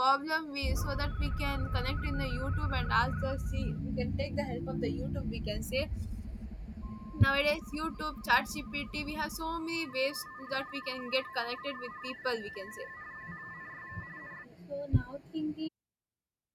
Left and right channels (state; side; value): identical; both; correlation 1.00